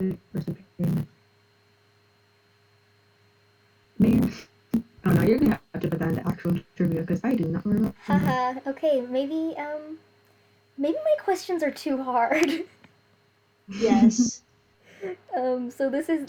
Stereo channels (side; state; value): both; identical; correlation 1.00